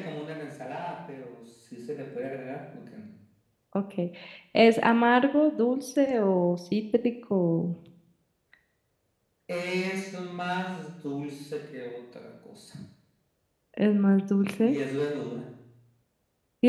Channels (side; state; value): both; identical; correlation 1.00